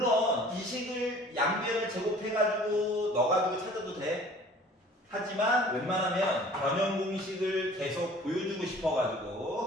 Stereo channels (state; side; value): normal; both; correlation 0.49